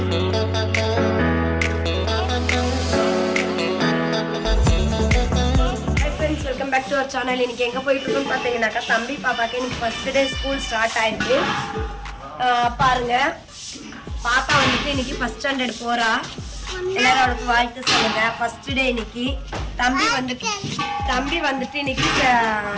welcome back to our channel. இன்னைக்கு எங்கே போயிட்டு இருக்கோம்னு பார்த்தீங்கன்னாக்கா, தம்பி பாப்பாக்கு இன்னைக்கு ஃபர்ஸ்ட் டே ஸ்கூல் ஸ்டார்ட் ஆயிருக்கு. பாருங்க, பாப்பா வந்துட்டு இன்னைக்கு ஃபர்ஸ்ட் ஸ்டாண்டர்ட் போறா. எல்லாரும் அவளுக்கு வாழ்த்து சொல்லுங்க. ஃபர்ஸ்ட் டே இன்னைக்கு. தம்பி வந்துட்டு இன்னைக்கு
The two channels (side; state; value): both; identical; correlation 1.00